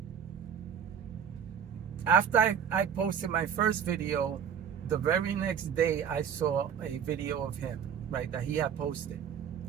after I posted my first video, the very next day I saw a video of him, right, that he had posted,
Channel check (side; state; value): left; quieter; 8.0 dB